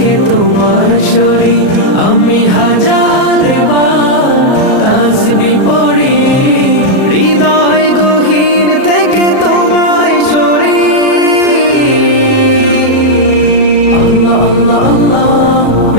তোমার সরি আমি হাজার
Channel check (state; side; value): late; right; 37 ms